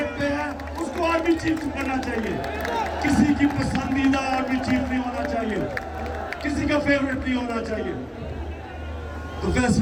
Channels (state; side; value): identical; both; correlation 1.00